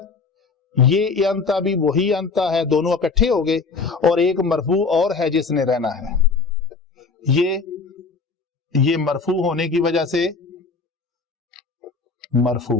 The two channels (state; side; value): quieter; right; 4.5 dB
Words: یہ انتا بھی وہی انتا ہے، دونوں اکٹھے ہو گئے، اور ایک مرفوع اور ہے جس نے رہنا ہے، یہ مرفوع ہونے کی وجہ سے